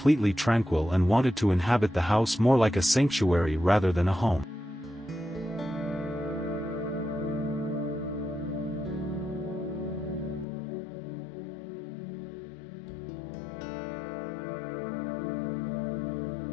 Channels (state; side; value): drops out; right; at 10.5 s